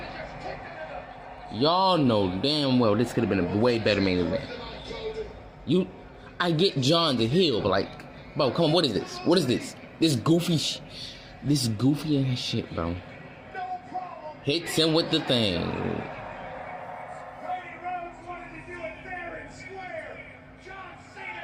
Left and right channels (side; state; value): both; identical; correlation 1.00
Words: Y'all know damn well this could have been a way better main event. I get John's a heel, but like, bro, come on, what is this? What is this? This goofy ass shit, bro. Hits him with the thing.